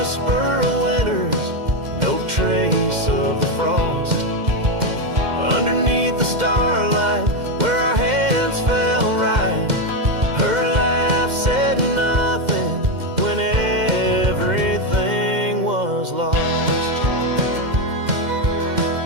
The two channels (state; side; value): late; left; 2.1 ms